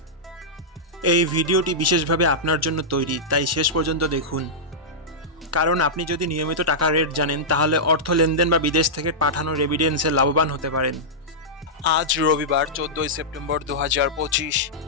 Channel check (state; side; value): normal; both; correlation -0.11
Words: এই ভিডিওটি বিশেষভাবে আপনার জন্য তৈরি, তাই শেষ পর্যন্ত দেখুন। কারণ আপনি যদি নিয়মিত টাকার রেট জানেন, তাহলে অর্থ লেনদেন বা বিদেশ থেকে পাঠানো রেমিটেন্সে লাভবান হতে পারেন। আজ রবিবার 14ই সেপ্টেম্বর 2025।